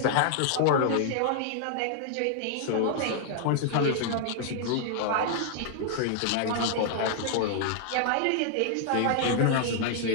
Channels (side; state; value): both; different; correlation -0.01